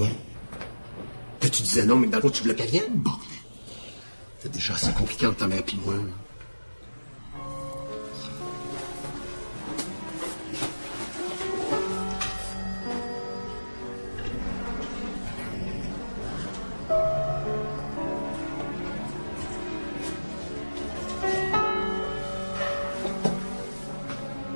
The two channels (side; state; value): both; inverted; correlation -1.00